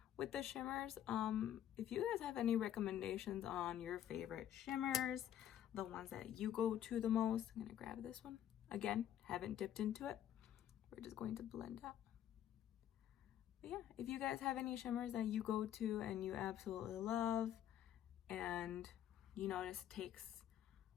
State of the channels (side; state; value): right; quieter; 10.9 dB